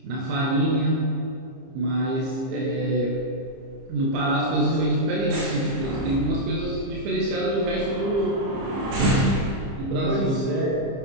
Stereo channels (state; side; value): late; left; 30 ms